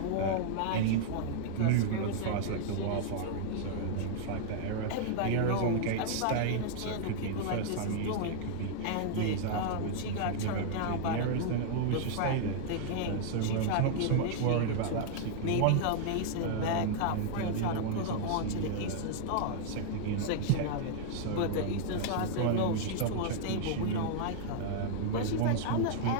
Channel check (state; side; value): different; both; correlation -0.01